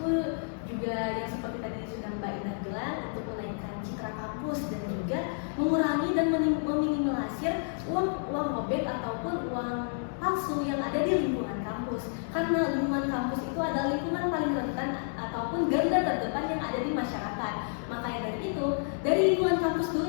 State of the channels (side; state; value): right; silent; digital silence